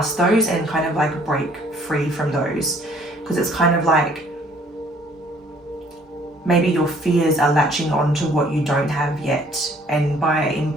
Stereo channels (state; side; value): normal; both; correlation 0.59